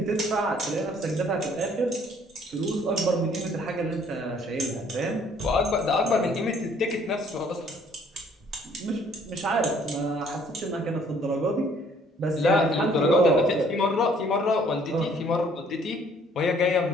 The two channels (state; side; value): normal; both; correlation 0.61